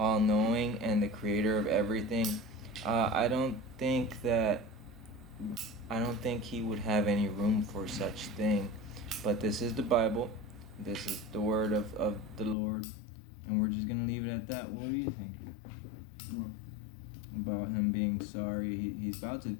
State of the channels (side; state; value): right; drops out; at 12.6 s